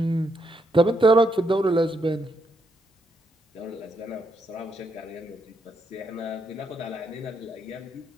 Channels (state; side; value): normal; both; correlation 0.78